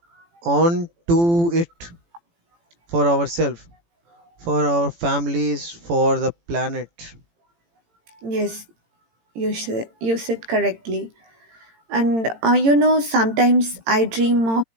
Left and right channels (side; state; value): left; late; 18 ms